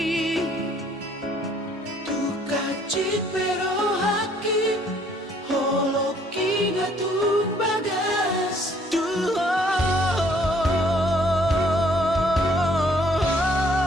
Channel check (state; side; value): normal; both; correlation 0.62